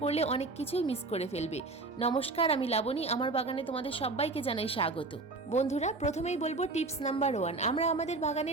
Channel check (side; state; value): left; quieter; 3.5 dB